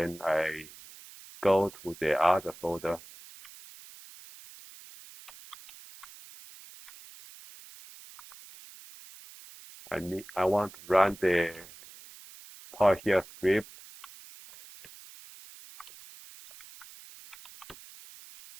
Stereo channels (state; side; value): noise; right; hiss, 19 dB below the sound